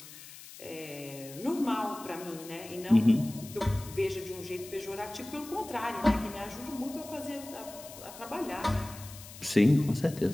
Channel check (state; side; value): noise; left; hiss, 16 dB below the sound